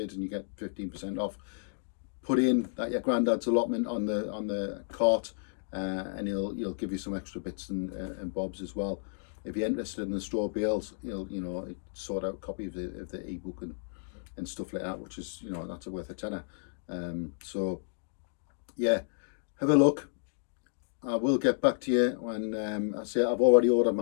and you get 15% off. Put in that your granddad's allotment on the cart, and he'll give you some extra bits and bobs as well. If you're interested in the straw bales, he'll sort out a copy of the ebook and stuff like that, which is, that's worth a tenner. So yeah, have a look. I will get back to you when I say I've already ordered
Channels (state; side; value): silent; right; digital silence